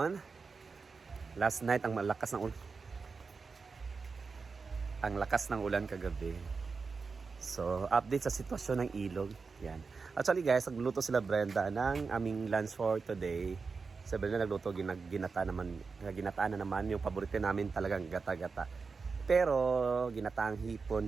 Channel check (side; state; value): left; quieter; 4.7 dB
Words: Last night ang malakas ng ulan. Ang lakas ng ulan kagabi. So, update sa sitwasyon ng ilog. Yan. Actually guys, nagluto sila Brenda ng aming lunch for today. Sa Brenda nagluto ginataan na naman yung paborito namin talagang gata-gata. Pero ginataang hipon